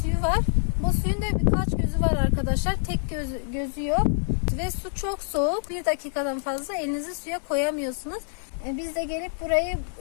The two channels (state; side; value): silent; right; digital silence